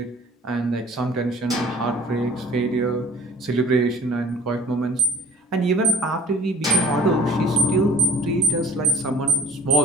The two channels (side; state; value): both; normal; correlation 0.48